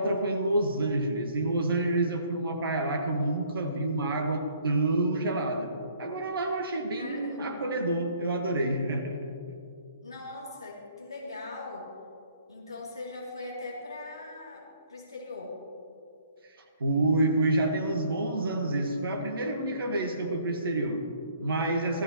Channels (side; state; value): both; inverted; correlation -0.60